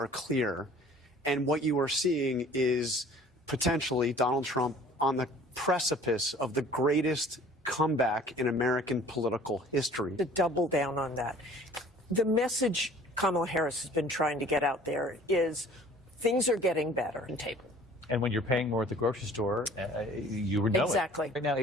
clear. And what you are seeing is potentially Donald Trump on the precipice of the greatest comeback in American political history. To double down on that, the message Kamala Harris has been trying to get out there is things are getting better on table. And when you're paying more at the grocery store, you would know Exactly. it. Right now,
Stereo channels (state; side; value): normal; both; correlation 0.51